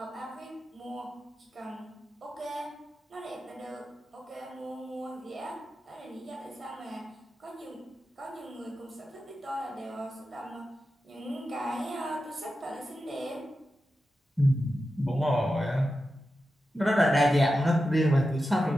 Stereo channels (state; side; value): normal; both; correlation 0.91